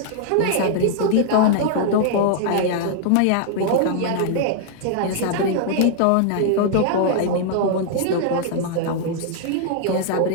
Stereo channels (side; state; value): both; different; correlation -0.01